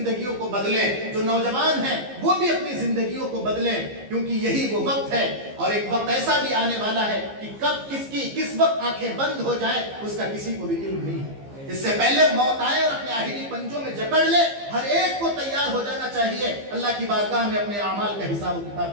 کو بدلیں، جو نوجوان ہیں وہ بھی اپنی زندگیوں کو بدلیں، کیونکہ یہی وہ وقت ہے۔ اور ایک وقت ایسا بھی آنے والا ہے کہ کب کس وقت آنکھیں بند ہو جائیں اس کا کسی کو بھی علم نہیں ہے۔ اس سے پہلے موت آئے اور اپنے آخری پنجوں میں جکڑ لے، ہر ایک کو تیار ہو جانا چاہیے اللہ کی بارگاہ میں اپنے اعمال کا حساب و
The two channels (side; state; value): left; late; 15 ms